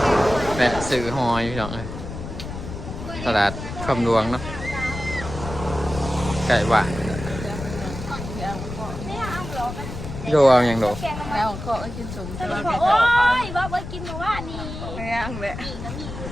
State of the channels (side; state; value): left; noise; rumble, 9 dB below the sound